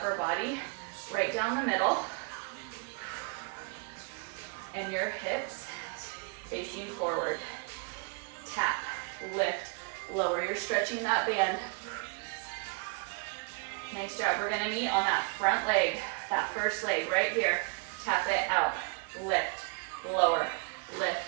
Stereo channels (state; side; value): quieter; left; 34.9 dB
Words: body right down the middle and your hips facing forward. Tap, lift, lower. You're stretching that band. Nice job. We're gonna meet on that front leg, that first leg right here. Tap it out, lift, lower,